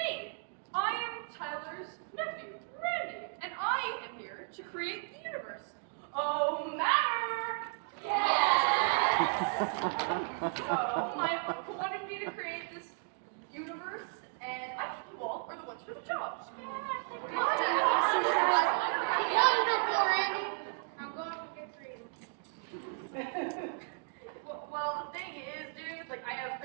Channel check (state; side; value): silent; left; 55 dB below the other